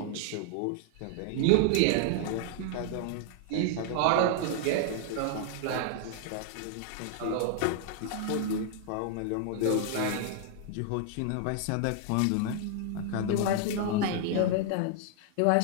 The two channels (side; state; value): both; different; correlation 0.00